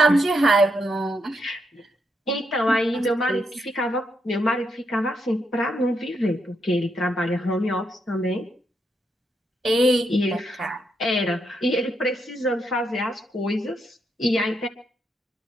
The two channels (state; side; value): normal; both; correlation 0.80